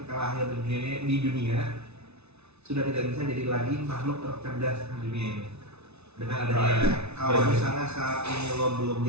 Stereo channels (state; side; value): late; left; 0.80 ms